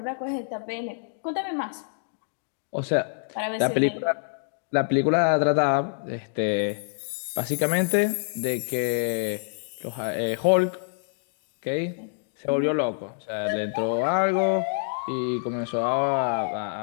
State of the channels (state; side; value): silent; right; digital silence